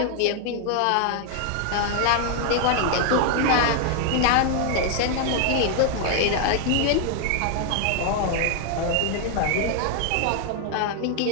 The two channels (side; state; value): both; different; correlation 0.00